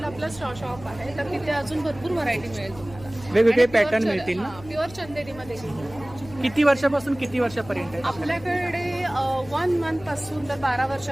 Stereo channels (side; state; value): left; noise; hum, 18 dB below the sound